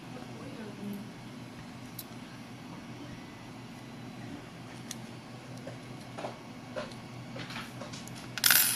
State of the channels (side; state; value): both; identical; correlation 1.00